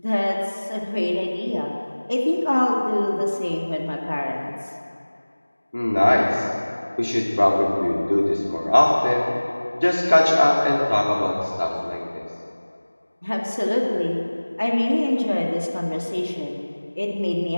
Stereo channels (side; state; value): both; inverted; correlation -1.00